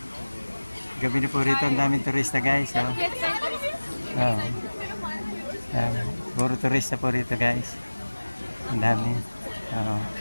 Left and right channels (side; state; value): both; inverted; correlation -1.00